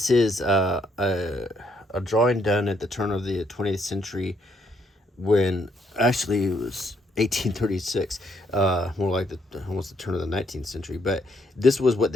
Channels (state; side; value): normal; both; correlation 0.72